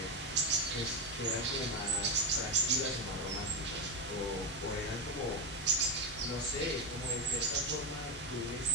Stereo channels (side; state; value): both; normal; correlation 0.11